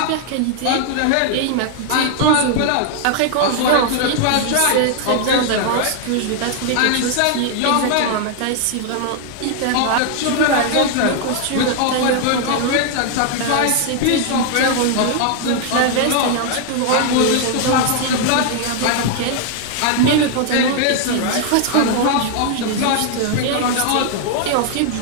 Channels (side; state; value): both; different; correlation 0.00